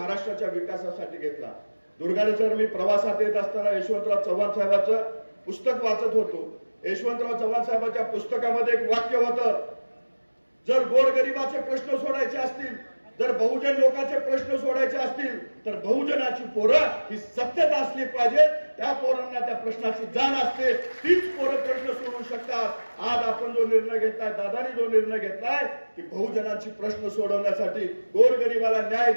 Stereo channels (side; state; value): both; inverted; correlation -1.00